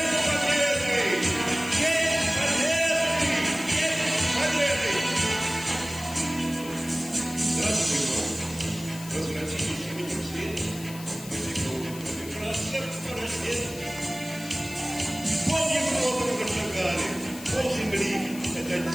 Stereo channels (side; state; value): left; noise; hiss, 15 dB below the sound